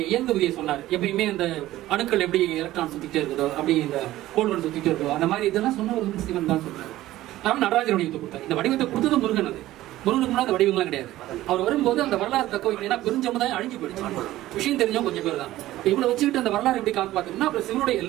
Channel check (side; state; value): left; quieter; 15.4 dB